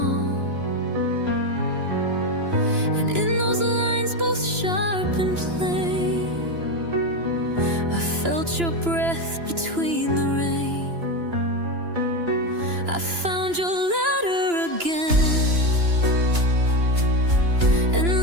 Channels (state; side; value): late; left; 2.9 ms